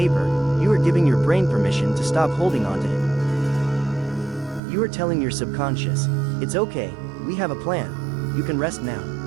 you are giving your brain permission to stop holding on to it. You are telling your subconscious, it's okay, we have a plan, you can rest now.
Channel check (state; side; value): drops out; left; at 4.6 s